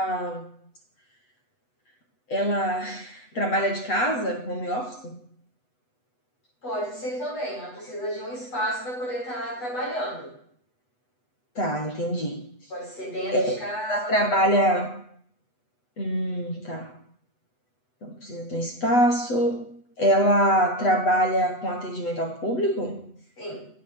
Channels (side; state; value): right; late; 8.1 ms